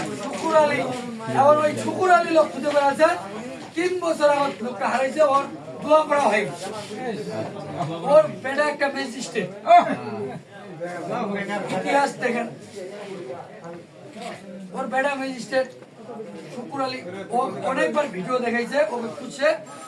শুক্কুর আলী, এবার ওই শুক্কুর আলী লোক খুঁজে বেড়াচ্ছে। 3 বছর আমার লোকটা হারাইছে, ওর দোয়া করা হয়। ওর বেটা একটা ম্যাজিস্ট্রেট, ইতিহাস দেখেন, ওর বেটা ম্যাজিস্ট্রেট শুক্কুর আলী। ও অনেকবার ভিডিও দেখাইছে, ওকে খুঁজছে।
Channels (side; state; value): both; identical; correlation 1.00